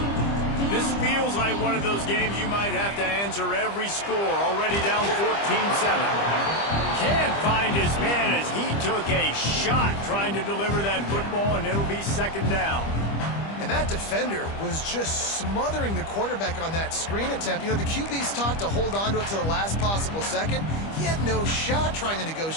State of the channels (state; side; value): late; right; 25 ms